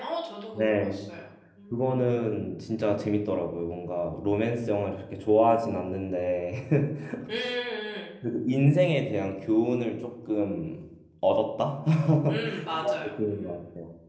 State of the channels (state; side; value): identical; both; correlation 1.00